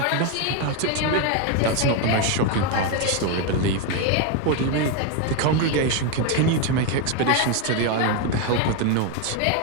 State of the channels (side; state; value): both; different; correlation 0.02